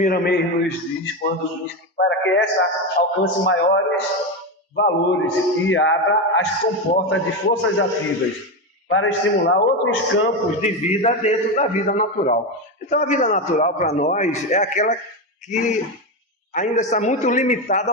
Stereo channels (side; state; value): both; normal; correlation 0.13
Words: nos diz quando diz que para que essa alcance maiores valores e abra as comportas de forças ativas para estimular outros campos de vida dentro da vida natural. Então, a vida natural para nós é aquela que ainda está muito limitada